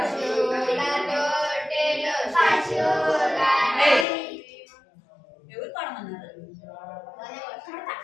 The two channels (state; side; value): drops out; right; at 4.0 s